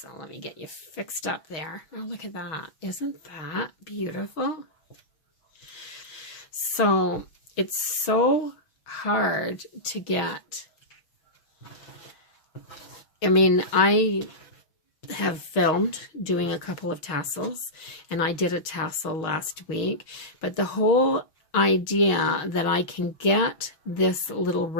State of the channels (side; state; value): right; late; 6.4 ms